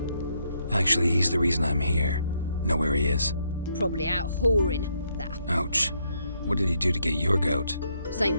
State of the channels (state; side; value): inverted; both; correlation -0.75